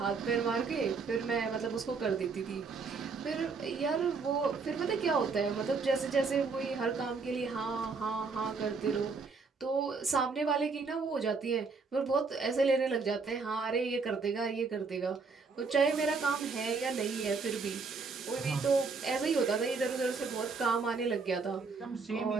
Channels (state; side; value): quieter; left; 4.6 dB